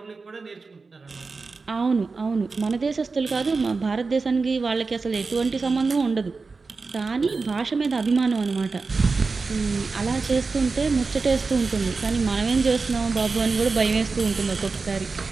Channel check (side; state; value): left; quieter; 4.2 dB